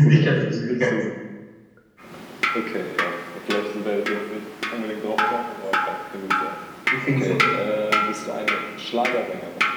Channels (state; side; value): identical; both; correlation 1.00